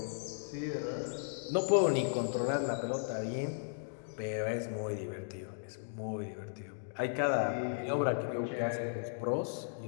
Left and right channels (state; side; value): silent; right; digital silence